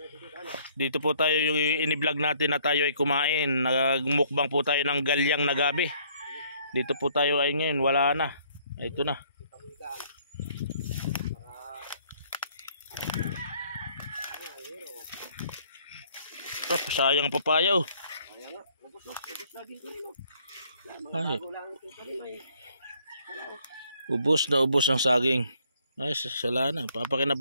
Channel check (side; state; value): both; inverted; correlation -0.62